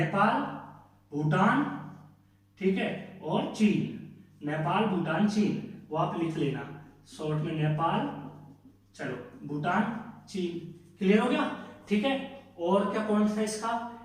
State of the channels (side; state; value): both; identical; correlation 1.00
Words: भूटान, ठीक है, और चीन। नेपाल, भूटान, चीन, वो आप लिख लेना शॉर्ट में, नेपाल, चलो, भूटान, चीन, क्लियर हो गया, ठीक है। और क्या पॉइंट था इसका,